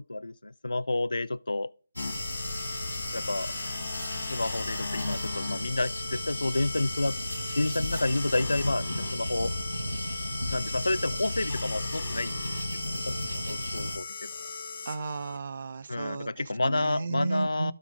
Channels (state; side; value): inverted; both; correlation -0.95